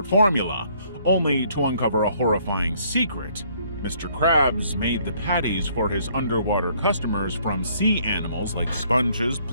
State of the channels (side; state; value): both; inverted; correlation -0.64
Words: formula, only to uncover a horrifying secret. Mr. Krabs made the patties for his underwater customers from sea animals like sponges,